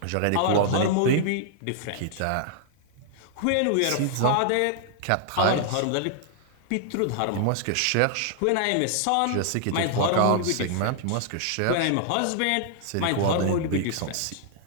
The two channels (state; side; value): different; both; correlation 0.00